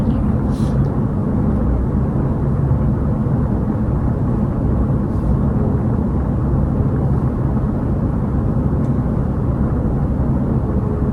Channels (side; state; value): both; identical; correlation 1.00